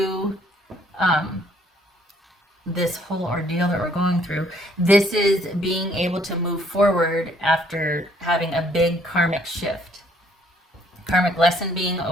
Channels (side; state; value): both; normal; correlation 0.64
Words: this whole ordeal that we're going through. This is being able to move forward after having a big karmic shift. Karmic lesson being